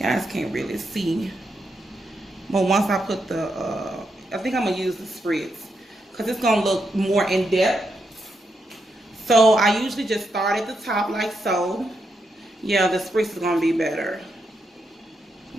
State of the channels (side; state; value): both; normal; correlation 0.82